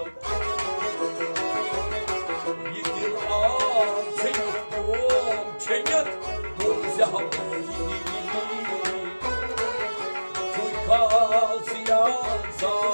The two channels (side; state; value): both; inverted; correlation -1.00